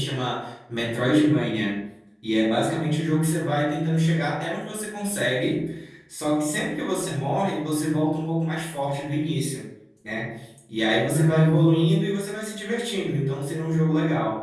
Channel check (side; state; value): both; identical; correlation 1.00